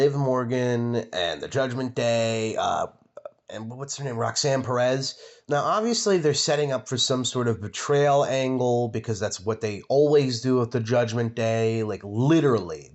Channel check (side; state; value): both; identical; correlation 1.00